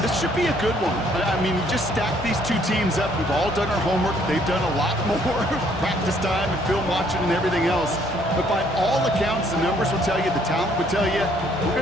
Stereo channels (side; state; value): both; normal; correlation 0.65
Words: this should be a good one. I mean, you just stack these two teams up. We've all done our homework. They've done a lot more practice time and film watching and everything else. But by all accounts, the numbers will tell you, the talent will tell you, we're